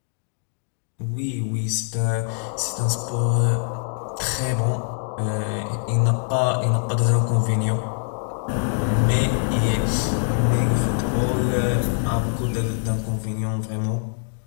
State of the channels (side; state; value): right; silent; 63 dB below the other